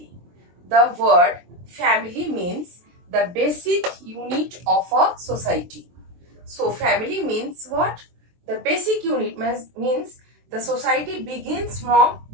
The word family means the basic unit of a society. So, family means what? The basic unit means the society begins from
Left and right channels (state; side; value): late; left; 23 ms